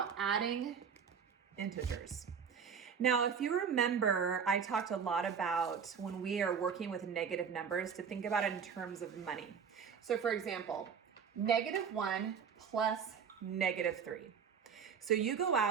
adding integers. Now, if you remember, I talked a lot about when we are working with negative numbers to think about it in terms of money. So for example, -1 plus -3. So you go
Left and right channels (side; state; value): left; quieter; 6.8 dB